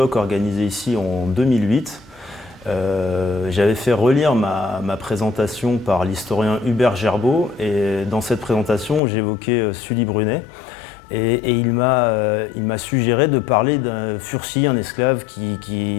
organisé ici en 2008. J'avais fait relire ma présentation par l'historien Hubert Gerbeau, et dans cette présentation, j'évoquais Sully Brunet. Et il m'a suggéré de parler d'un Furcy, un esclave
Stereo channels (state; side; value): drops out; right; at 9.0 s